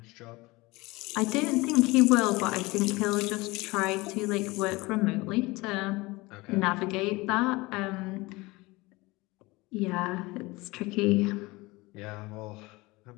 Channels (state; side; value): quieter; right; 22.4 dB